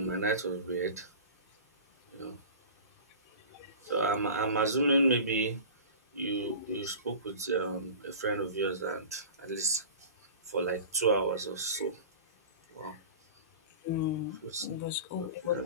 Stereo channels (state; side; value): inverted; both; correlation -0.36